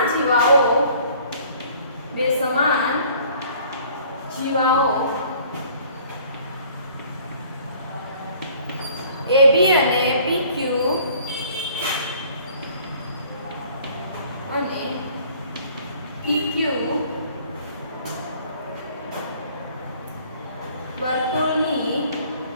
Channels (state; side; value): inverted; both; correlation -0.55